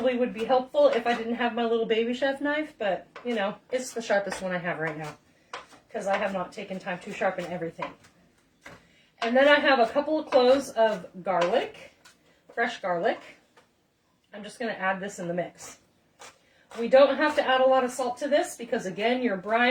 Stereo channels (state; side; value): identical; both; correlation 1.00